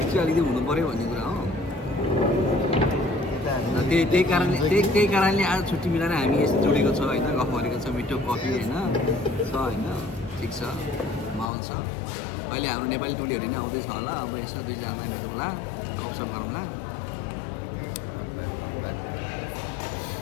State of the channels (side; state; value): right; drops out; at 11.5 s